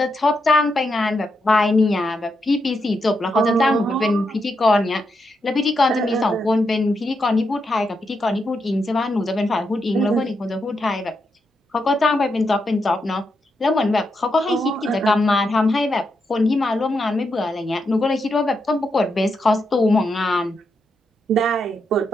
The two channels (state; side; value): normal; both; correlation 0.83